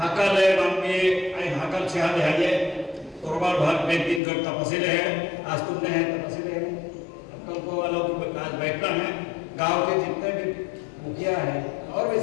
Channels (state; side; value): drops out; right; at 4.2 s